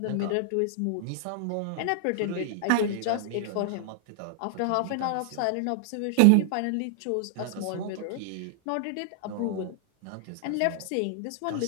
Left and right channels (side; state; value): both; different; correlation 0.00